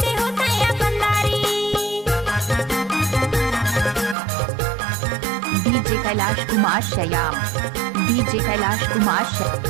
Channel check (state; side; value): drops out; left; at 4.2 s